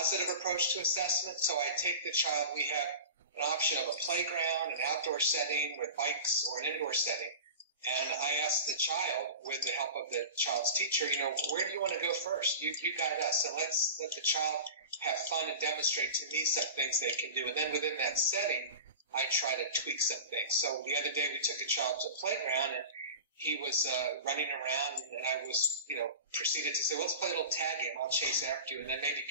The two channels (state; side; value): inverted; both; correlation -0.32